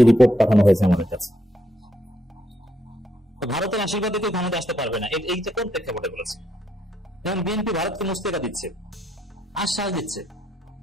রিপোর্ট পাঠানো হয়েছে আমাদের কাছে। ভারতের আশীর্বাদে কেউ ক্ষমতা আসতে পারবে না, এইটা কোন প্রেক্ষাপটে বলেছে? যেমন বিএনপি ভারতকে মুস্তেকা দিচ্ছে, আশ্বাস দিচ্ছে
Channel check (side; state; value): both; normal; correlation 0.75